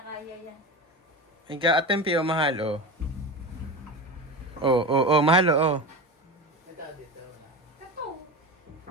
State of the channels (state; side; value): normal; both; correlation 0.25